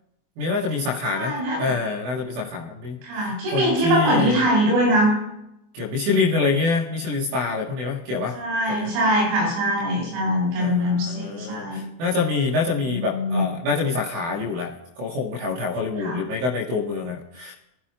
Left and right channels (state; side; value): late; left; 24 ms